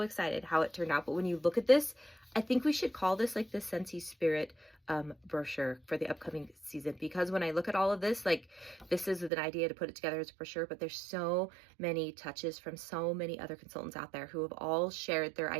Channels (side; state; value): left; drops out; at 9.3 s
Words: excited how it turned out. But when you look at this, I think we should call this like the Scentsy Spirit brochure for the upcoming season, because when I look at all of this, like, this is an idea to put it together as a brochure, but there's so many touches from so many other consultants out there who have all shared their